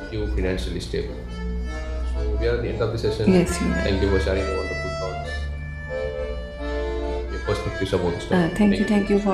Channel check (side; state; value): both; identical; correlation 1.00